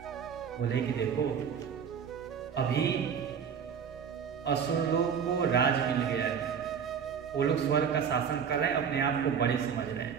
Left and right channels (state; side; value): quieter; left; 7.3 dB